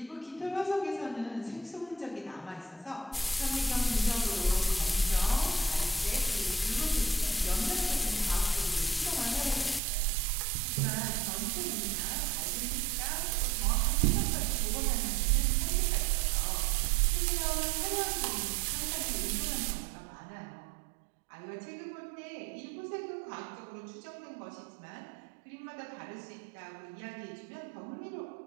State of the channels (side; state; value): left; drops out; at 9.8 s